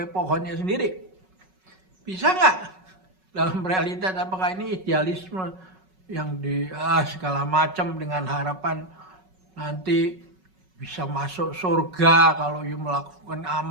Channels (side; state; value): left; late; 5.4 ms